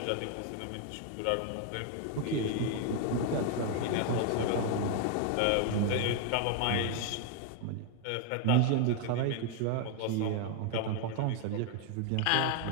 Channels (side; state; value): both; different; correlation 0.01